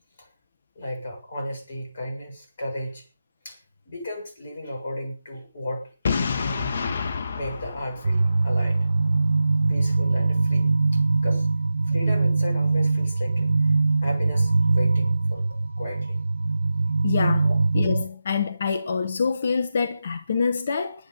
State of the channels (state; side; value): inverted; both; correlation -0.91